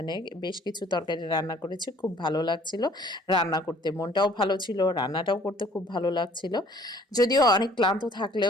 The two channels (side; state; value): both; normal; correlation 0.56